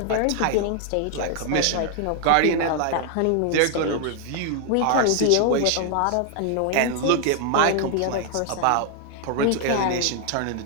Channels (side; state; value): both; different; correlation 0.00